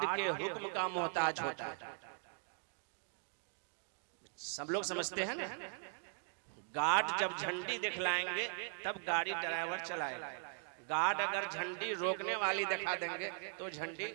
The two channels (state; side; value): silent; left; 51 dB below the other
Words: के हुक्म का मोहताज होता है। सब लोग समझते हैं ना, गार्ड जब झंडी दिखलाएंगे तब गाड़ी ड्राइवर चलाएगा। गार्ड अगर झंडी रोकने वाली दिखा देंगे तो झंडी